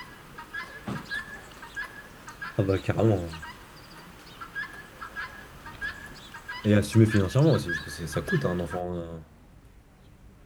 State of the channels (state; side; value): identical; both; correlation 1.00